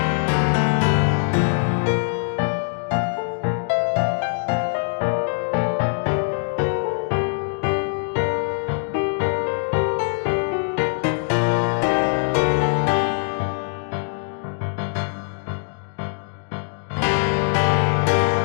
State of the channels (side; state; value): right; silent; digital silence